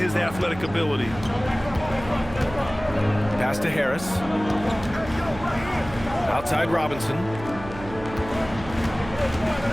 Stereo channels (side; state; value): right; noise; hum, 14 dB below the sound